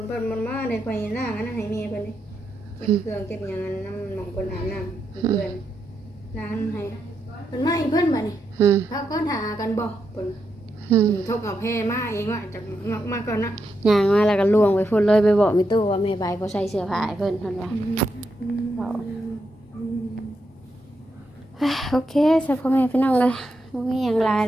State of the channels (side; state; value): both; normal; correlation 0.83